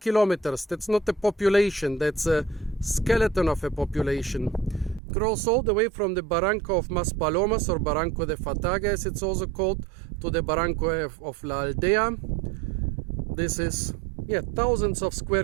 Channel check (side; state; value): left; drops out; at 5.0 s